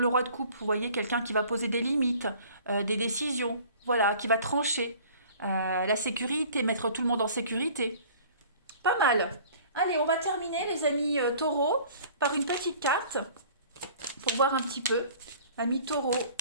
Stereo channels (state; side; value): inverted; both; correlation -0.49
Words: roi de coupe, vous voyez, quelqu'un qui va poser des limites, des décisions, voilà, qui va trancher. La sécurité, mettre tout le monde en sécurité. Pas mal. Allez, on va terminer, les amis taureaux, par une petite carte pour voir un petit peu. Amis taureaux,